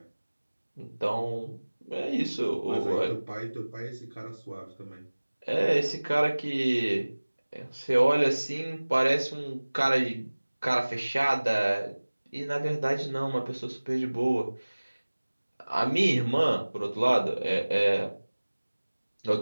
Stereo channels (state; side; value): inverted; both; correlation -1.00